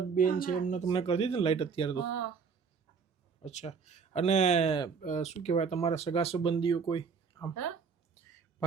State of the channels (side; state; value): left; quieter; 5.7 dB